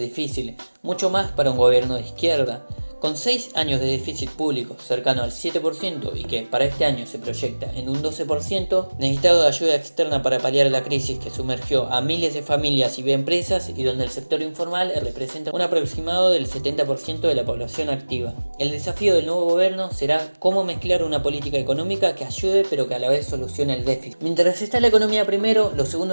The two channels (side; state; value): both; inverted; correlation -1.00